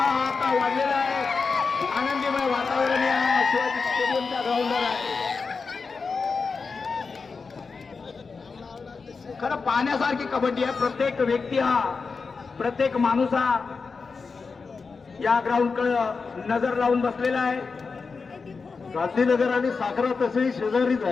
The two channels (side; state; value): right; quieter; 4.8 dB